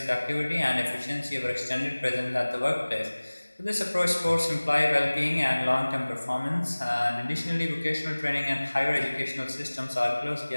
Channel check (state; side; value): inverted; both; correlation -1.00